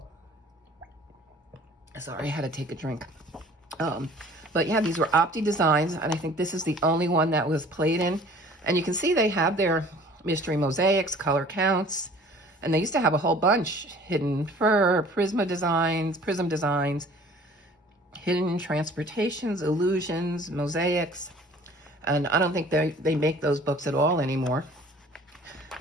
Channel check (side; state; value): both; normal; correlation 0.50